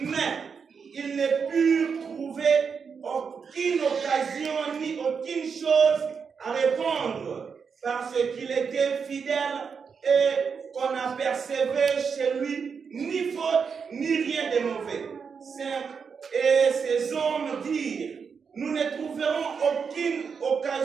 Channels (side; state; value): left; quieter; 6.0 dB